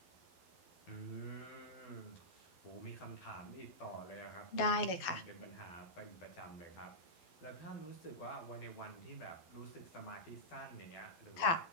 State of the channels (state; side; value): late; right; 12 ms